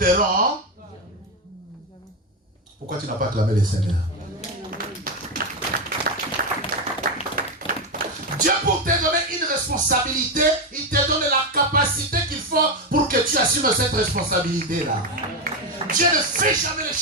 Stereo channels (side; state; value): both; normal; correlation 0.10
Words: Pourquoi tu n'as pas clamé le Seigneur? Dieu, pour te donner une responsabilité, il te donne la capacité qu'il faut pour que tu assumes cette responsabilité-là. Dieu ne fait jamais les